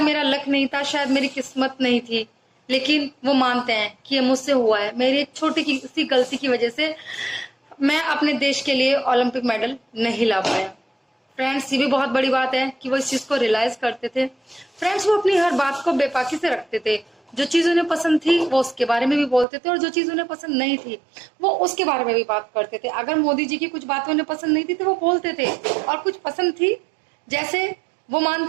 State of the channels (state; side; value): drops out; left; at 19.5 s